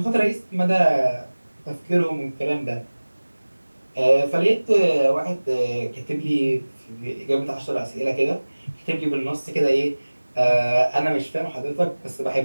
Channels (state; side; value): inverted; both; correlation -1.00